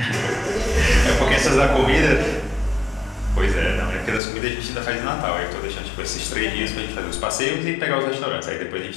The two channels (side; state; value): right; drops out; at 4.2 s